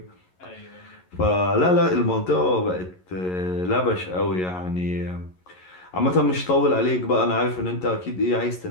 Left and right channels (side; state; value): right; late; 11 ms